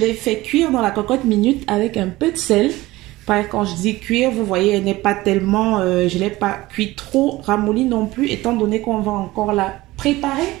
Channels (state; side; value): quieter; left; 18.7 dB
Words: fait cuire dans la cocotte minute avec un peu de sel. Quand je dis cuire, vous voyez, elle n'est pas tellement... je ne l'ai pas cuit trop ramolli non plus, étant donné qu'on va encore la préparer